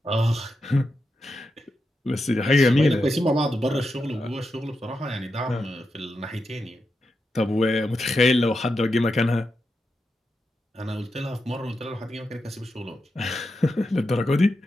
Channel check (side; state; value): both; normal; correlation 0.87